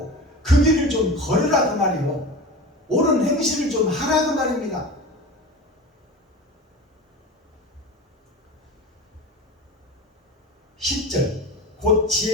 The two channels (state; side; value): normal; both; correlation 0.32